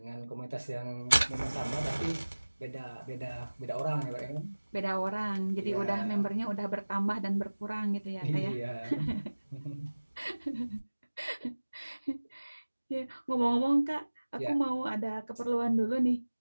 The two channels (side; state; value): both; inverted; correlation -1.00